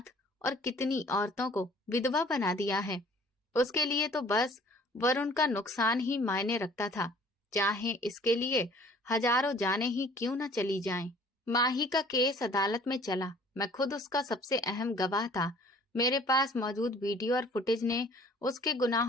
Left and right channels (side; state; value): both; normal; correlation 0.53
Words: और कितनी औरतों को विधवा बना दिया है। उसके लिए तो बस वरुण का नुकसान ही मायने रखता था, चाहे इसके लिए हजारों जानें ही क्यों न चली जाएं। माही का केस अदालत में चला। मैं खुद उसका सबसे अहम गवाह था। मेरे पास मौजूद वीडियो और फुटेज ने उसके